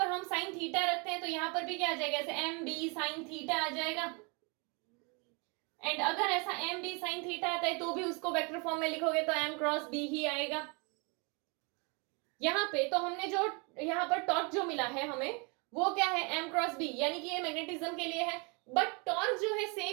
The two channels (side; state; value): left; quieter; 31.9 dB